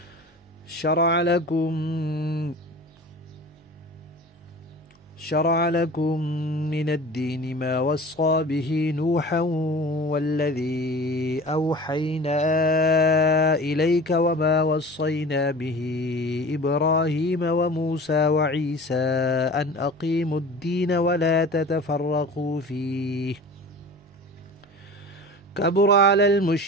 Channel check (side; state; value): both; normal; correlation 0.39